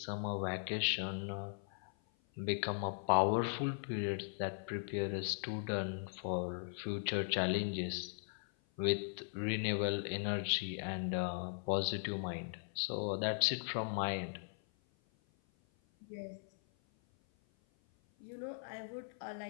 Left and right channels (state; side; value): silent; right; 52 dB below the other